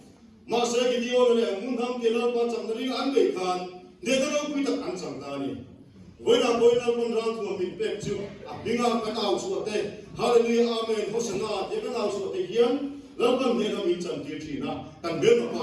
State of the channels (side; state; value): both; identical; correlation 1.00